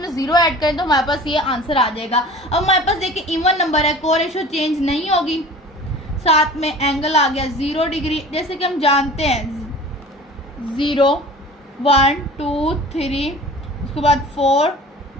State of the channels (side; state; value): both; normal; correlation 0.42